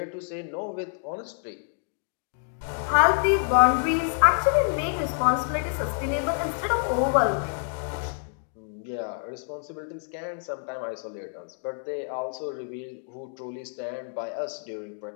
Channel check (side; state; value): right; silent; digital silence